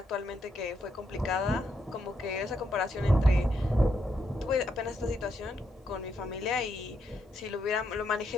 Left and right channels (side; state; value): both; normal; correlation 0.79